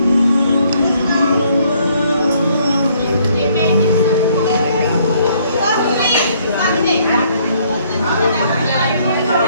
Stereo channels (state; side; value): inverted; both; correlation -0.66